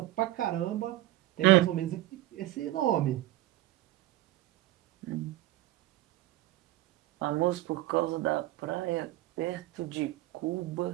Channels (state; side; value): quieter; left; 16.2 dB